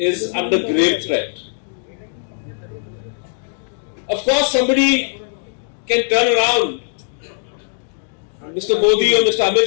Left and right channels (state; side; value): silent; right; digital silence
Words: under grave threat. Of course, somebody can turn around. Mr. Modi or Mr. Amit